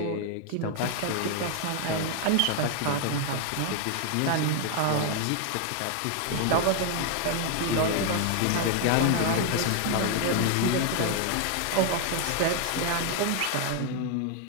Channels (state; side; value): different; both; correlation 0.00